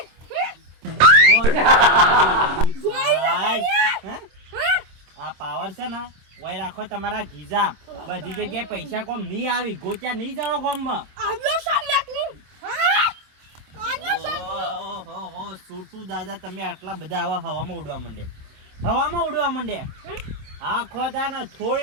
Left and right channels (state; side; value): late; left; 26 ms